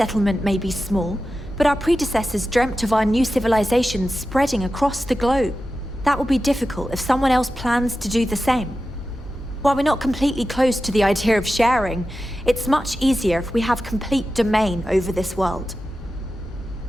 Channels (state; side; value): normal; both; correlation 0.92